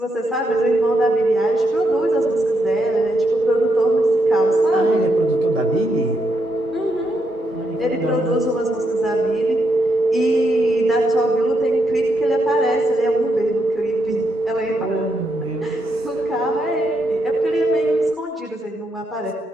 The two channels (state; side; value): normal; both; correlation 0.80